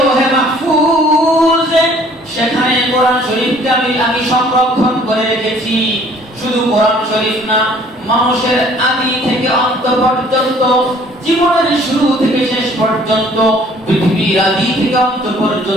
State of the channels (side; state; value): both; normal; correlation 0.56